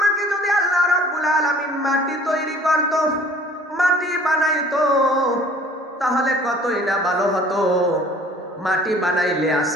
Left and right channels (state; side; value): normal; both; correlation 0.51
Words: যদি আল্লাহ রাব্বুল আলামিন মাটি তৈরি করত, মাটি বানাইতো, তাহলে কতই না ভালো হতো। মাটি বানাইলে